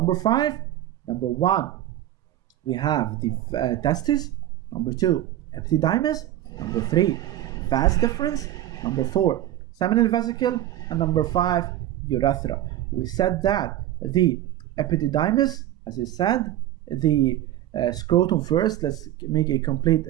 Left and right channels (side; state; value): left; quieter; 13.4 dB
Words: 5. Number 1, we have the testes. Number 2, epididymis. Number 3, vas deferens. Number 4, seminal vesicle. And number 5, urethra. We said that the epididymis, as I said, the scrotum first. Let's make a complete